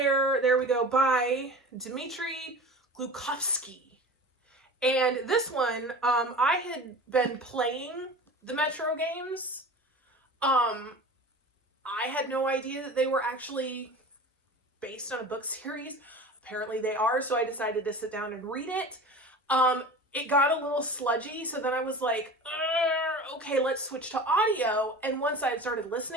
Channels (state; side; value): normal; both; correlation 0.36